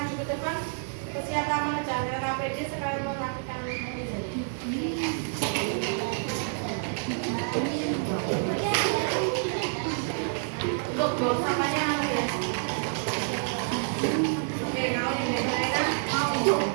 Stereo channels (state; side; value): silent; left; digital silence